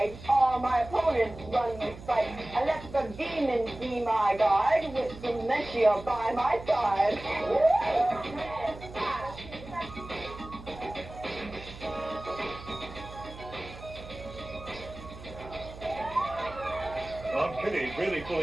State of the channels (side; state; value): right; noise; hum, 15 dB below the sound